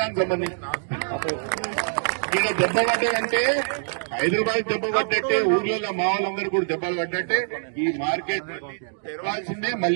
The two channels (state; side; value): silent; left; digital silence